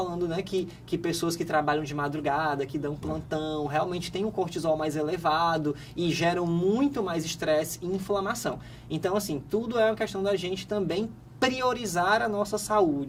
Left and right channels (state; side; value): identical; both; correlation 1.00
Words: né, que pessoas que trabalham de madrugada, que dão plantão, realmente têm um cortisol mais elevado e geram muito mais estresse e inflamação. Então, assim, tudo é uma questão da gente também priorizar a nossa